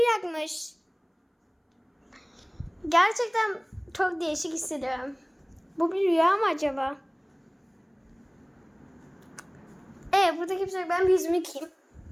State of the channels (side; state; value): both; identical; correlation 1.00